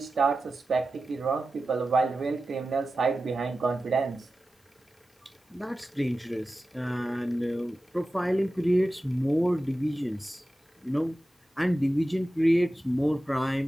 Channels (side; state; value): both; normal; correlation 0.94